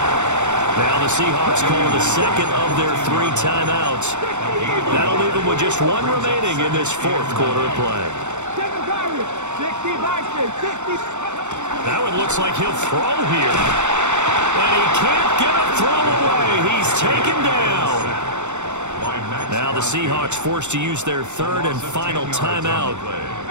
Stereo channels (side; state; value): left; late; 0.84 ms